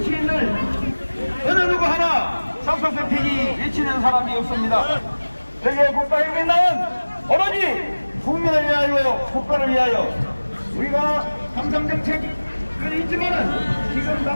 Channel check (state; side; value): inverted; both; correlation -1.00